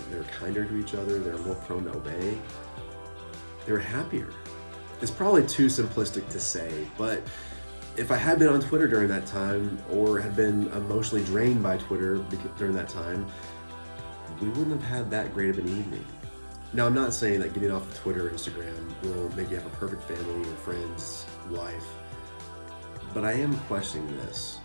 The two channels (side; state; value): both; inverted; correlation -1.00